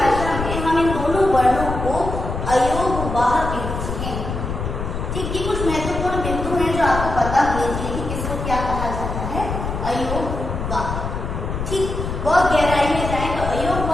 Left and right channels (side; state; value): left; noise; rumble, 4 dB below the sound